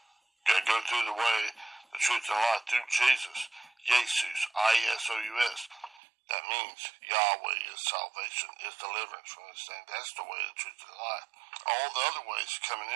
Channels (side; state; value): left; drops out; at 6.0 s